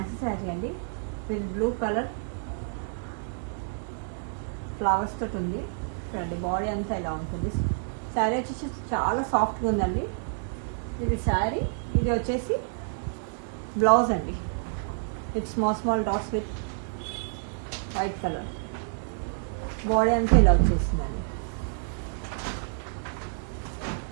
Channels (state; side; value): silent; left; 59 dB below the other